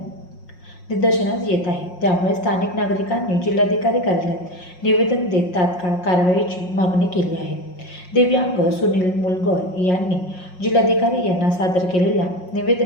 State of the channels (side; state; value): right; late; 5.5 ms